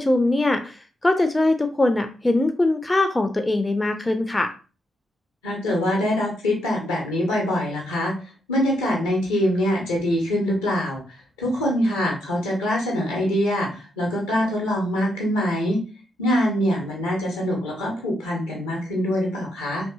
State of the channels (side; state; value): both; normal; correlation 0.81